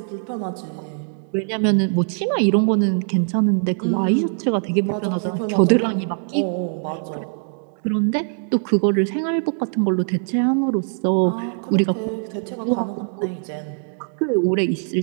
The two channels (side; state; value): left; silent; 62 dB below the other